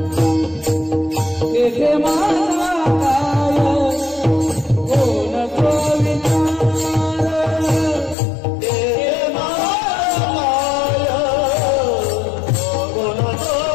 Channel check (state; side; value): drops out; right; at 8.2 s